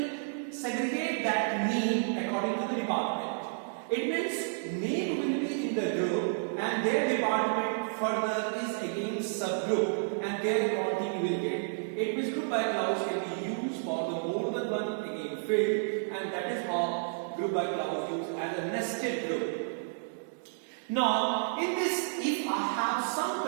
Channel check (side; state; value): left; silent; digital silence